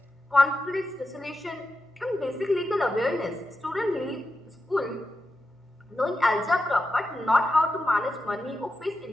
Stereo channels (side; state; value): both; normal; correlation 0.89